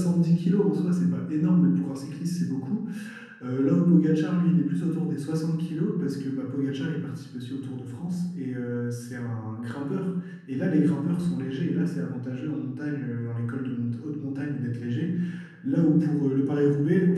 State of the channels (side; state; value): both; identical; correlation 1.00